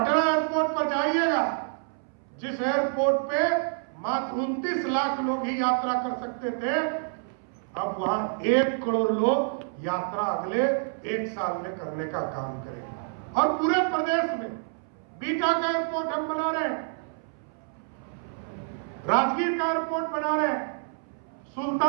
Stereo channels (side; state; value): left; silent; 60 dB below the other